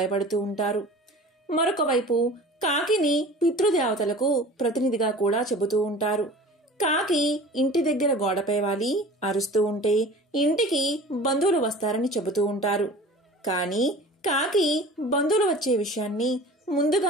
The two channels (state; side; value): normal; both; correlation 0.41